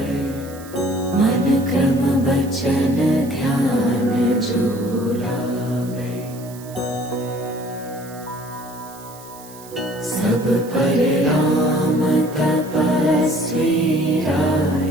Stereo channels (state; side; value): noise; right; hiss, 20 dB below the sound